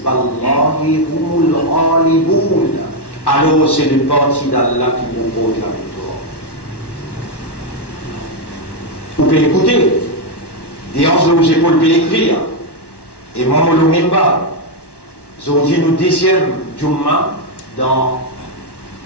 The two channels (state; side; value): late; right; 1.1 ms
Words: اللَّهِ هُمُ الْغَالِبُونَ. Alors c'est le parti d'Allah qui vous porte la victoire. Vous pouvez écouter des hanches de vos épaules pour écrire et moi le mimba. Nous dit nous deuxième Jumma dans